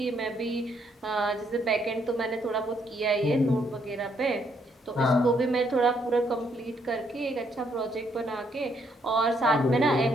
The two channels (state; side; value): normal; both; correlation 0.72